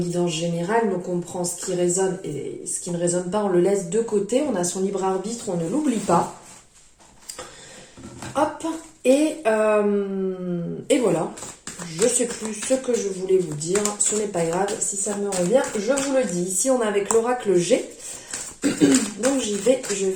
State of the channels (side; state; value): both; identical; correlation 1.00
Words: guidance générale, donc on prend ce qui résonne et ce qui ne résonne pas, on le laisse de côté, on a son libre arbitre, on ne l'oublie pas. Hop, et voilà, je ne sais plus ce que je voulais vous dire, ce n'est pas grave, si ça me revient, je vous le dis. Ici on est avec l'oracle G, donc je vais